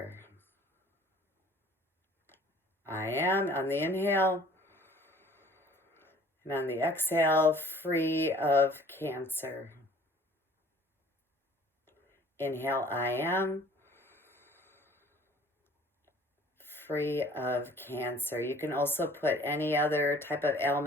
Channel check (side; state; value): both; normal; correlation 0.52